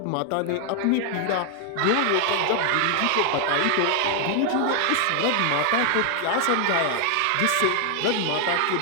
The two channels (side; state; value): both; different; correlation 0.00